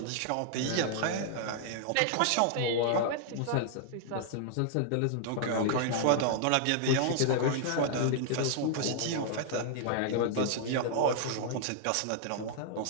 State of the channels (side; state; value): both; different; correlation -0.01